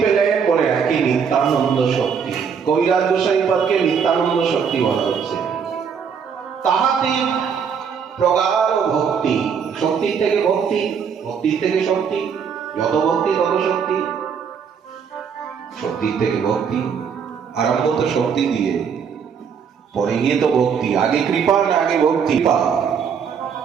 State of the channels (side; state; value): left; quieter; 6.8 dB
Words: পেলেন? বলে একই নিত্যানন্দ শক্তি। কবিরাজ গোসাই পদকে নিত্যানন্দ শক্তি বলা হচ্ছে। তাহাতে প্রগাঢ় ভক্তি, শক্তির থেকে ভক্তি, ভক্তির থেকে শক্তি, যত ভক্তি তত শক্তি, শক্তির থেকে ভক্তি। আরম্ভ তো শক্তি দিয়ে, পরে গিয়ে তো ভক্তি। আগে কৃপা না আগে ভক্তি?